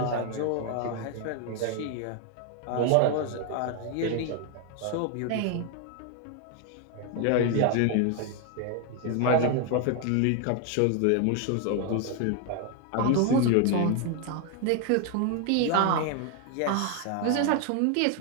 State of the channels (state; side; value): different; both; correlation 0.01